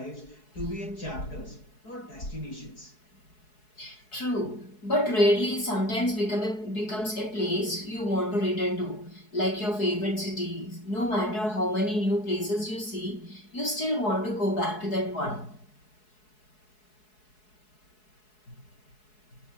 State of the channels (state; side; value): late; right; 4.7 ms